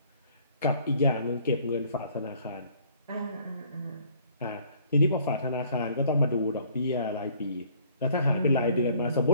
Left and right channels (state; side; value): inverted; both; correlation -0.59